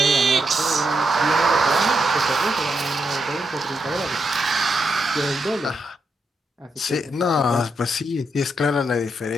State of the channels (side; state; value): both; normal; correlation 0.82